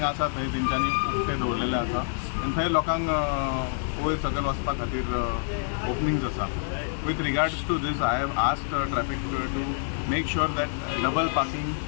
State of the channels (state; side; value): silent; right; digital silence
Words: आसा थंय तेंच्यांनी उक्ते दवरलेले आसा आनी थंय लोकांक वयर सकयल वचपा खातीर ओपनिंग्स आसा. With regards to these I have asked traffic to make sure that double parking